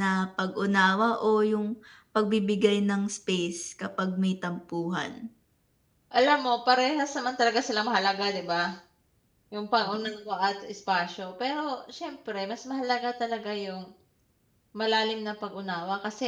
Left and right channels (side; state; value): both; identical; correlation 1.00